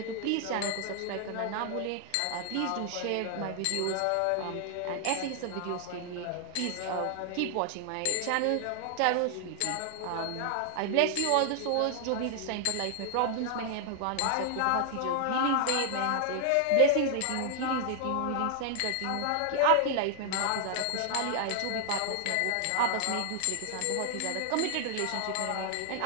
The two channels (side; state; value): both; different; correlation 0.00